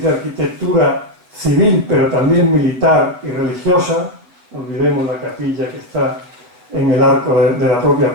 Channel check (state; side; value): late; left; 8.4 ms